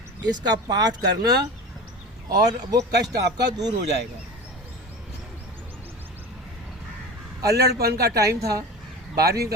इसका पाठ करना और वो कष्ट आपका दूर हो जाएगा। अल्लड़पन का टाइम था, 12वीं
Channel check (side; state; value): both; normal; correlation 0.32